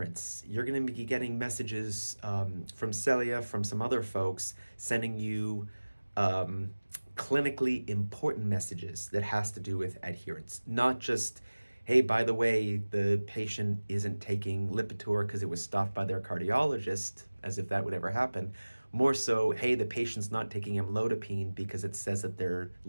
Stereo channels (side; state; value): both; inverted; correlation -1.00